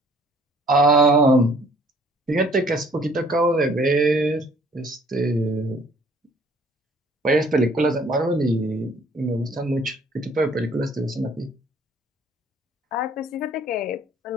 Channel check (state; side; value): normal; both; correlation 0.57